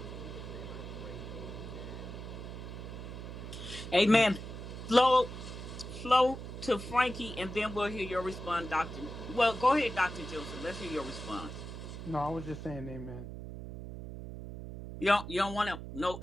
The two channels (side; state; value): right; noise; hum, 9 dB below the sound